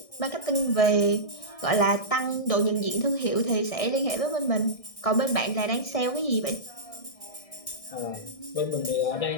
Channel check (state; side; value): late; right; 1.6 ms